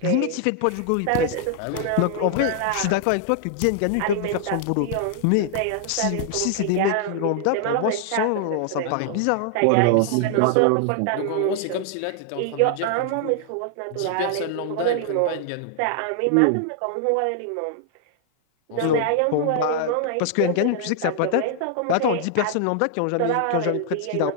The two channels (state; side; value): different; both; correlation 0.00